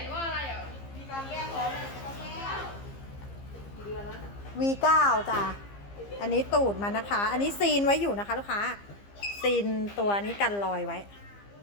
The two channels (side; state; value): right; late; 15 ms